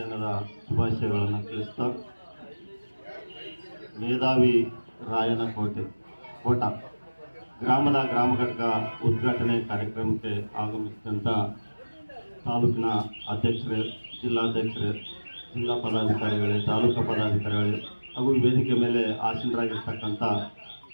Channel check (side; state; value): both; inverted; correlation -1.00